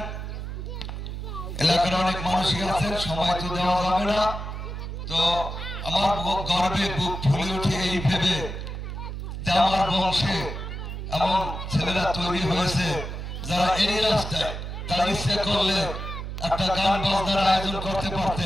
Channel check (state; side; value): noise; right; hum, 6 dB below the sound